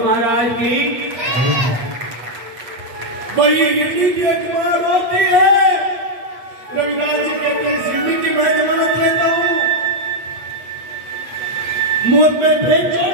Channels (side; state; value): left; late; 8.2 ms